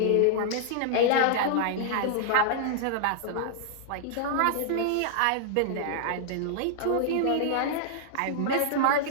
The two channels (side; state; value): both; different; correlation -0.01